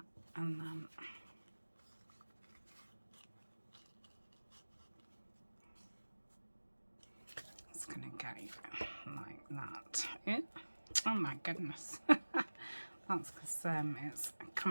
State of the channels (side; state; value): both; inverted; correlation -1.00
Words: and then it's going to go like that. Yeah. Oh my goodness. That's because it's